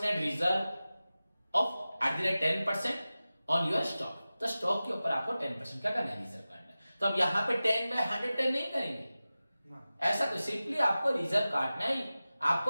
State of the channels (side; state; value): both; inverted; correlation -0.96